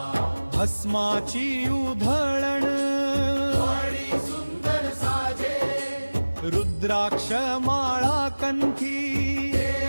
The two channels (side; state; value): both; inverted; correlation -1.00